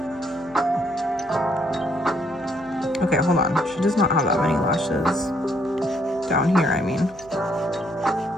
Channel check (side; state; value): right; noise; hum, 23 dB below the sound